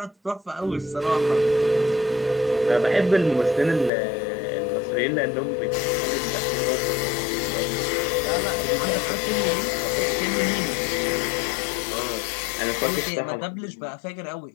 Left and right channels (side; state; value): right; drops out; at 3.9 s